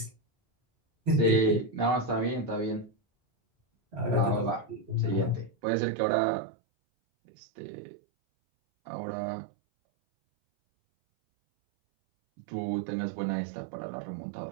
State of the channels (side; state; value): left; drops out; at 5.5 s